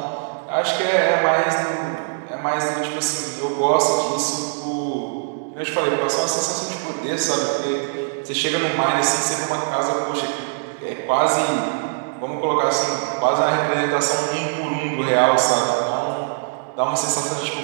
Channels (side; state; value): left; silent; digital silence